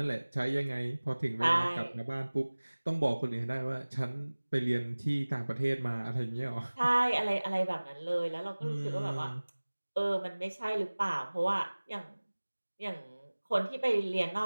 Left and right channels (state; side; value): inverted; both; correlation -1.00